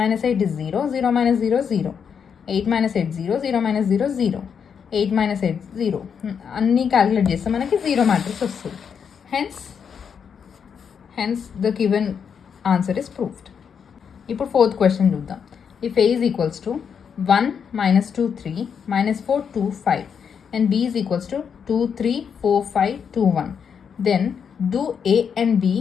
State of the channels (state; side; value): quieter; right; 7.0 dB